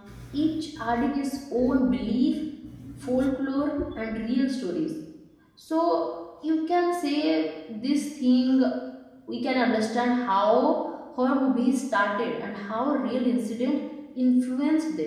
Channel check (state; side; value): identical; both; correlation 1.00